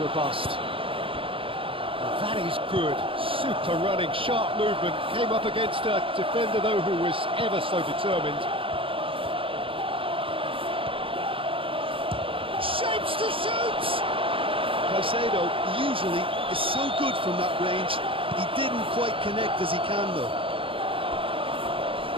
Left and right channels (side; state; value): left; late; 0.26 ms